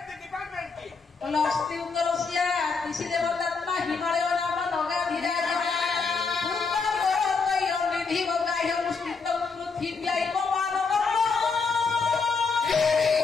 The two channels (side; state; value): right; quieter; 4.8 dB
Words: ଅସ୍ତି ଉତ୍ତରସିଆ ଋଷି ଦେବତାତ୍ମା ହିମାଳୟ ନାମ ନଗାଧିରା ନିଧି ବଗାହ୍ୟ ମୁଷ୍ଟିତ ପୃଥିବୀ ମାନବ